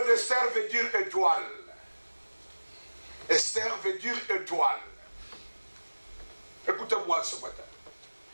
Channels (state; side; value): inverted; both; correlation -1.00